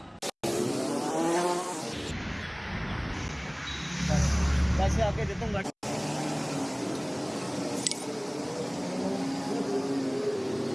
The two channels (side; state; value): both; identical; correlation 1.00